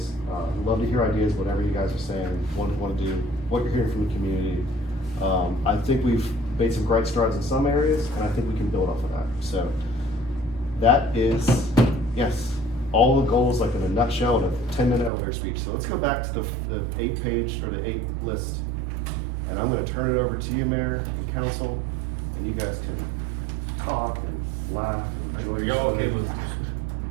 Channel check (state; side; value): drops out; left; at 15.1 s